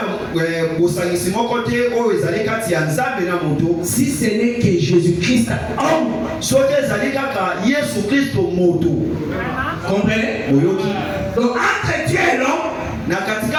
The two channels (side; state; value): both; identical; correlation 1.00